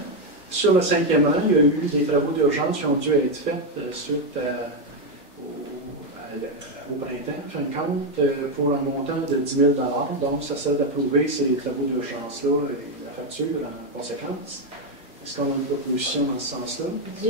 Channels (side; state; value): both; normal; correlation 0.05